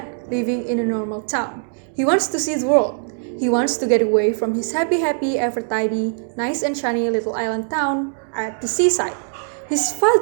living in a normal town. He wants to see the world. He wants to get away from his happy, ever tidy, nice and shiny little island town at the seaside. His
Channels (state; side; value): silent; left; digital silence